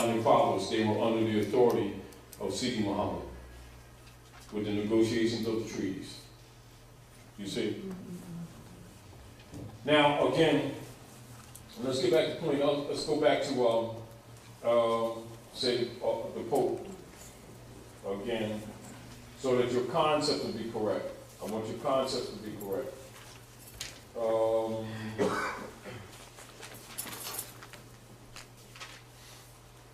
fathers. They were under the authority of Sidi Muhammad with the negotiations of the treaties. You see? Now, again, let's get back to the point. Let's go back to, the Pope again, so that your concept will be correct. I want your concept to be correct.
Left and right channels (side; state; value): both; identical; correlation 1.00